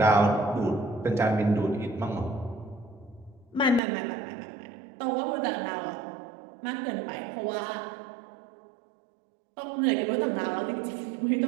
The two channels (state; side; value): drops out; left; at 3.8 s